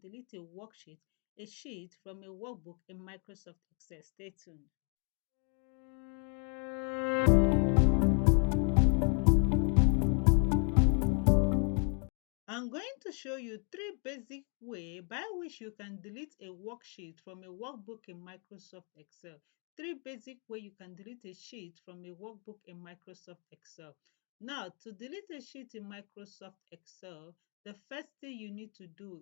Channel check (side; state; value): right; quieter; 38.1 dB